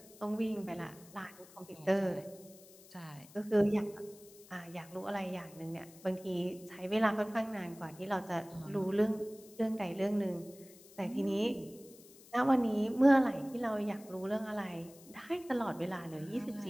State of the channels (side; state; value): left; noise; hiss, 22 dB below the sound